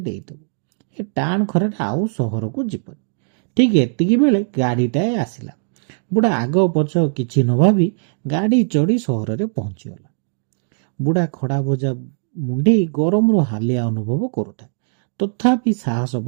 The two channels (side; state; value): left; silent; digital silence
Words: ଦେଇଦେବ। ଏ ଟାଣ ଖରାରେ ଆଉ ସହରକୁ ଯିବନି। ଠିକ୍ ଏତିକି ବେଳେ ଗାଡ଼ିଟାଏ ଆସିଲା। ବୁଢ଼ା ଆଗ ପଛ କିଛି ନ ଭାବି ଗାଡ଼ି ଚଢ଼ି ସହରରେ ପହଞ୍ଚିଗଲା। ବୁଢ଼ା ଖଡ଼ା ଭଜା ମୁଣ୍ଡେଇ ଗରମରୁ ହାଲିଆ ଅନୁଭବ କରୁଥାଏ। ତଥାପି ସାହସ